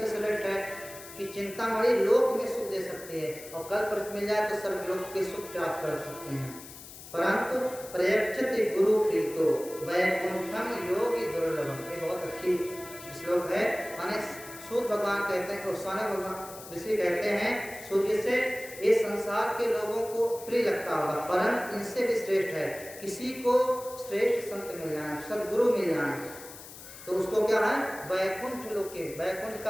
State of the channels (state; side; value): noise; left; hiss, 15 dB below the sound